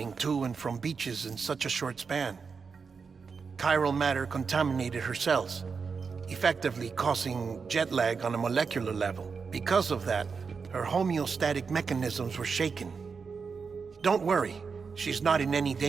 to and from beaches in such a short span. Chiral matter contaminated her cells, effectively causing jet lag on a molecular level. Because of that, her homeostatic mechanisms were shaken. Don't worry, she's not in any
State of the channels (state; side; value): quieter; left; 5.4 dB